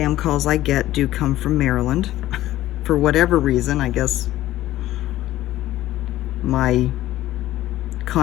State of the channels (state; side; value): quieter; right; 14.8 dB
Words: calls I get do come from Maryland. For whatever reason, I guess my